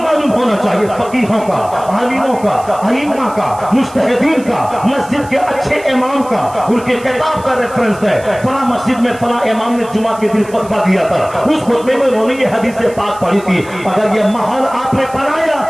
ہونا چاہیے، فقیہوں کا، عالموں کا، ائمہ کا، مجتہدین کا، مسجد کے اچھے امام کا، ان کے کتاب کا ریفرنس ہے، فلاں مسجد میں فلاں امام نے جمعہ کے دن خطبہ دیا تھا، اس خطبے میں انہوں نے یہ حدیث پاک پڑھی تھی۔ اگر یہ ماحول آپ نے بنایا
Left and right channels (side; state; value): right; noise; hiss, 21 dB below the sound